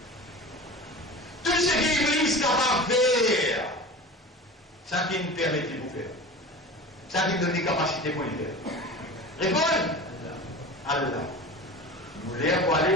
Tout ce qui est Iblis capable de faire, ça qui nous permet de vous faire. Ça qui nous donne des capacités pour le faire. Répondez. Allah. Vous voulez pour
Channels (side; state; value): both; normal; correlation 0.34